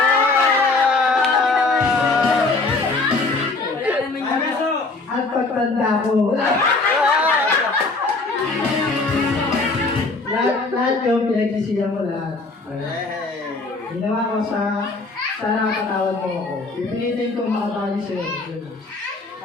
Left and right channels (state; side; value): quieter; right; 3.6 dB